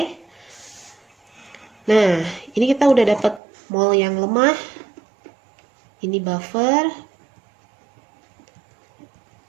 Nah, ini kita udah dapat mol yang lemah. Ini buffer.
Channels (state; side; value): drops out; left; at 3.4 s